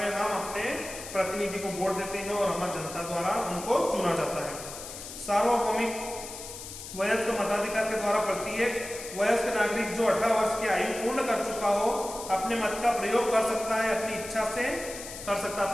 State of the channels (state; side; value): noise; left; hiss, 11 dB below the sound